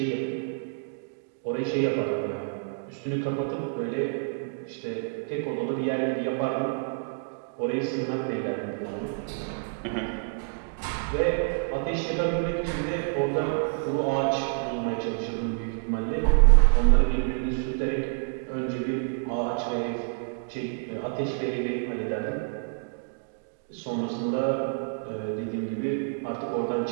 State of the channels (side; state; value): left; silent; digital silence